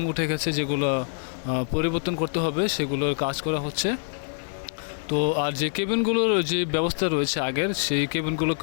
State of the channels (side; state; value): right; silent; 61 dB below the other